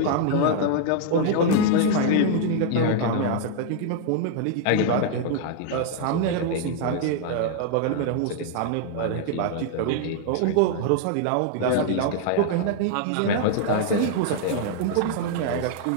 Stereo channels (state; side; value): different; both; correlation 0.00